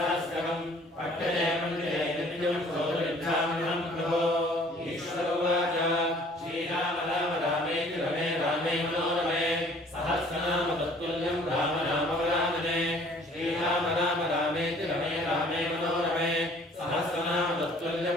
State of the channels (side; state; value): both; normal; correlation 0.54